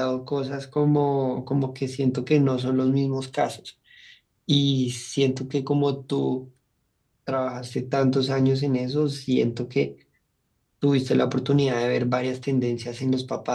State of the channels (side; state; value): both; identical; correlation 1.00